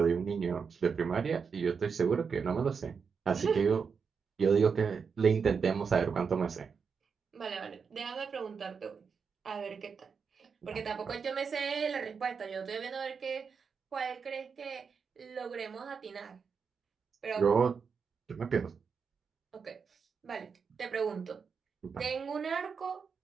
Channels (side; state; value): left; quieter; 5.8 dB